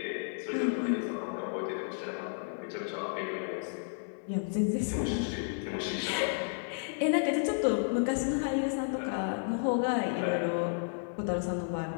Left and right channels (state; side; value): silent; right; digital silence